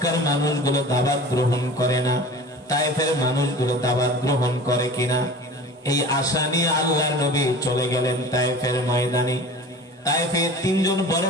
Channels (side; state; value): both; normal; correlation 0.39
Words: মানুষগুলো দাওয়াত গ্রহণ করে না, তায়েফের মানুষগুলো দাওয়াত গ্রহণ করে কিনা, এই আশা নিয়ে আল্লাহর নবী চলে গেলেন তায়েফের ময়দানে। তায়েফে তিনজন বড়